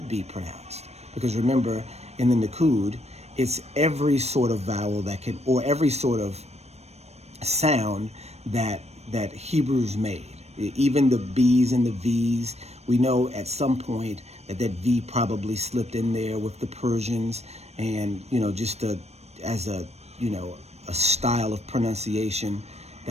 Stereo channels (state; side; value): late; left; 0.31 ms